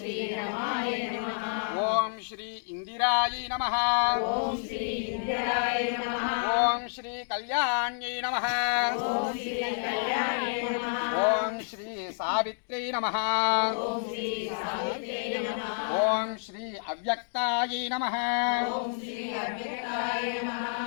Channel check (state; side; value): silent; right; digital silence